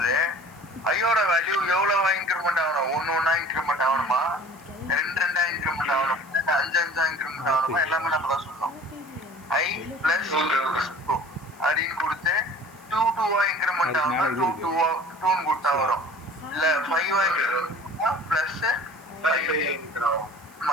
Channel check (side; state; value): right; noise; hiss, 26 dB below the sound